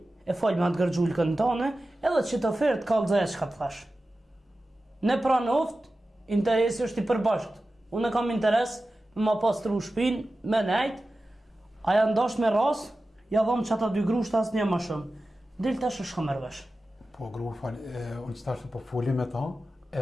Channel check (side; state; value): both; normal; correlation 0.94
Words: e folj me atë gërgjullkën tane, edhe që të ofertë kallëzaja që ka të thash. Ne pra në oft, interesi është i përbashkt. Unë kam interes me ma pastru shpinë, me nejt, aja ndash me ras, ja dhom që ata 2 grushta asë një ma shumë. Del tash është ka mërvesh. Po, gru, unë që tashtë po fuli me ta,